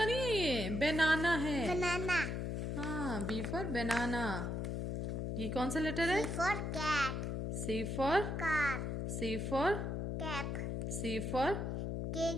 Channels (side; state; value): left; noise; hum, 2 dB below the sound